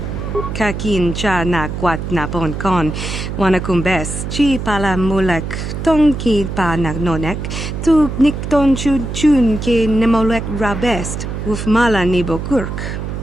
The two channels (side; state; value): right; noise; hum, 5 dB below the sound